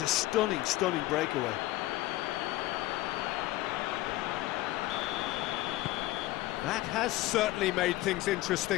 a stunning, stunning breakaway. That has certainly made things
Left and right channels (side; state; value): right; quieter; 17.3 dB